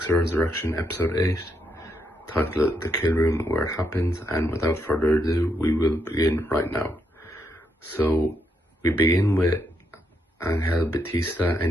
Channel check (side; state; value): both; normal; correlation 0.79